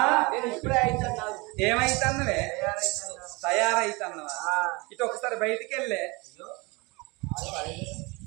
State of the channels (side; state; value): left; quieter; 26.1 dB